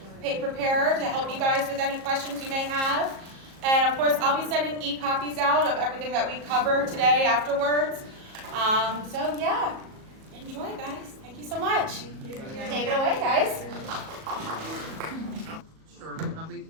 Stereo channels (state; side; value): late; left; 37 ms